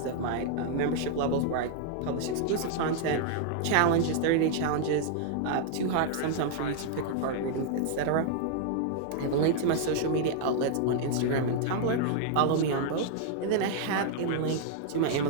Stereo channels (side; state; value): both; different; correlation -0.01